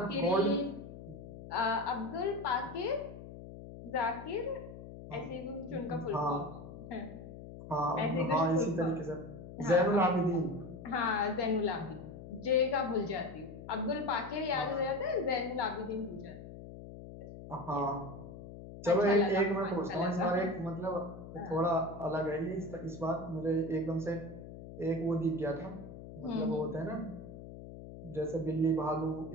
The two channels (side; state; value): left; noise; hum, 13 dB below the sound